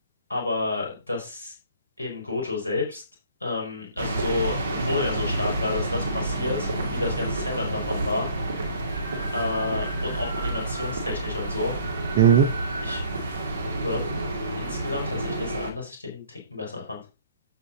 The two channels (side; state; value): both; inverted; correlation -0.54